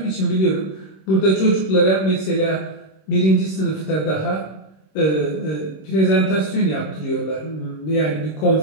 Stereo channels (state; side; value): late; right; 26 ms